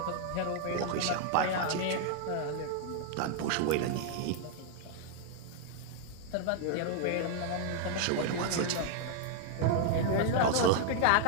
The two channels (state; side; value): different; both; correlation 0.00